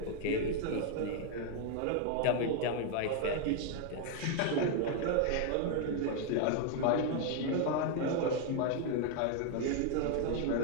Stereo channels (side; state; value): both; different; correlation 0.00